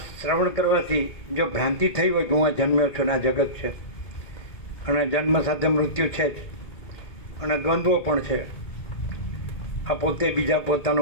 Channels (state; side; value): late; right; 1.8 ms